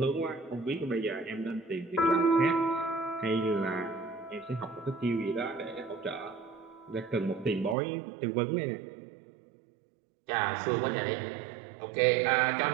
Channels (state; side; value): drops out; left; at 7.8 s